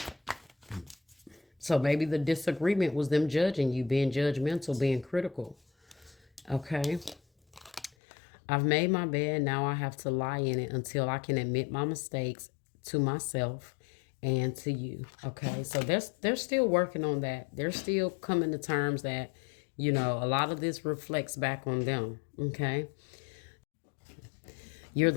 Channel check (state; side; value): drops out; right; at 7.9 s